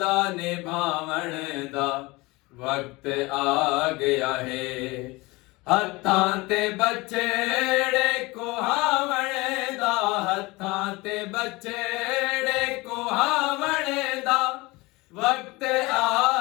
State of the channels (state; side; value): quieter; right; 22.9 dB